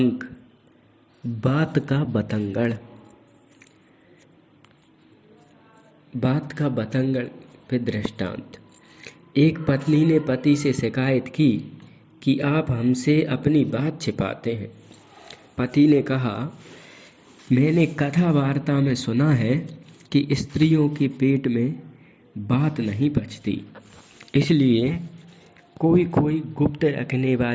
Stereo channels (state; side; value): identical; both; correlation 1.00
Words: बात का बतंगड़। बात का बतंगड़ पे दृष्टांत। एक पत्नी ने पति से शिकायत की कि आप हमसे अपनी बात छिपाते हैं। पति ने कहा, मैंने कथा वार्ता में सुना है कि स्त्रियों के पेट में बात नहीं पचती, इसलिए कोई कोई गुप्त रखने